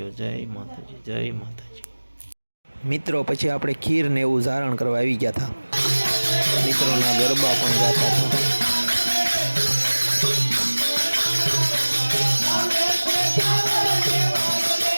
जय माताजी, जय माताजी। मित्रों पछी आपणे खीर ने एवुं धारण करवा आवी गया था। मित्रोना गरबा पण गाता था।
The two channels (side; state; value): both; inverted; correlation -1.00